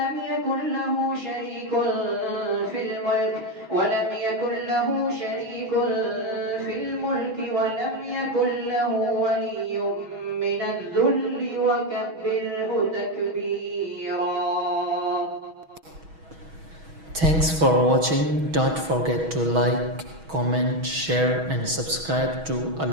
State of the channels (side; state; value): left; late; 6.2 ms